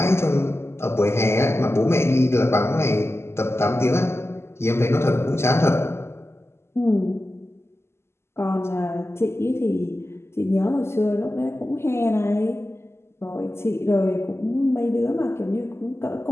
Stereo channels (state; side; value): late; right; 0.12 ms